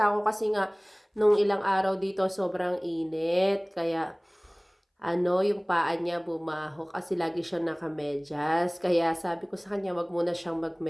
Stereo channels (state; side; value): identical; both; correlation 1.00